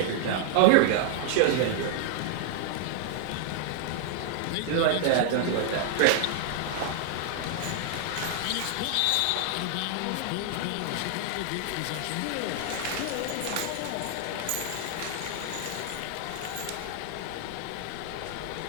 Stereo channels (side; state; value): both; different; correlation 0.00